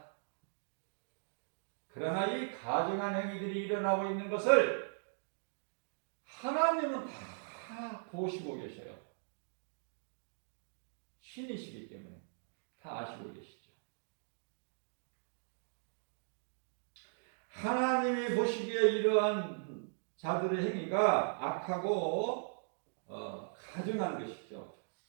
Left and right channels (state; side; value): silent; left; digital silence